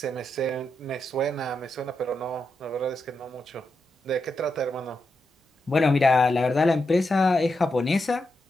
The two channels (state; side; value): normal; both; correlation 0.85